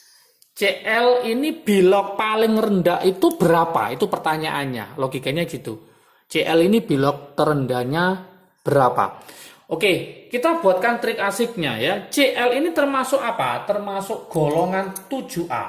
ini bilog paling rendah itu berapa? Itu pertanyaannya, logikanya gitu. CL ini bilog terendahnya berapa? Oke, kita buatkan trik asiknya ya. CL ini termasuk apa? Termasuk golongan 7A.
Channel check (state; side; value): identical; both; correlation 1.00